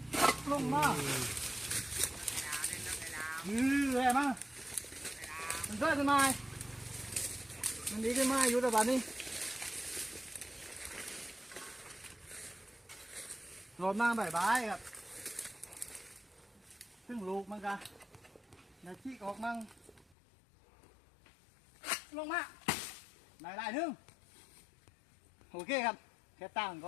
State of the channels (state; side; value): drops out; right; at 20.2 s